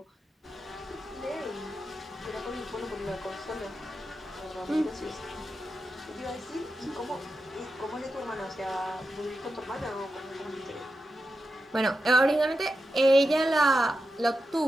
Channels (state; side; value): normal; both; correlation 0.89